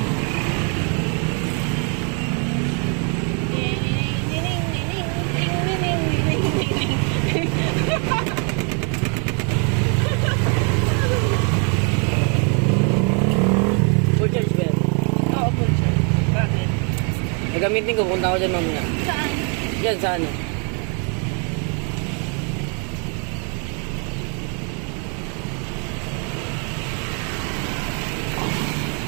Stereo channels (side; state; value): left; quieter; 38.1 dB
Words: Full charge ba yan? Oo, full charge. Bakit? Nagamitin ko, punta ko dyan mamaya. Saan? Yan, sa ano?